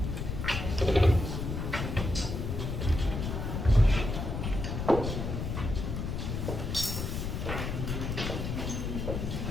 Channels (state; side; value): noise; left; rumble, 3 dB below the sound